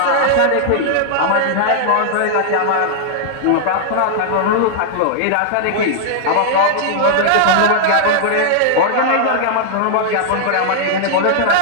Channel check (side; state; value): both; different; correlation -0.01